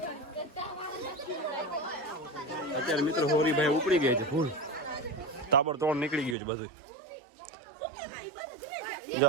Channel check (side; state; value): left; drops out; at 6.4 s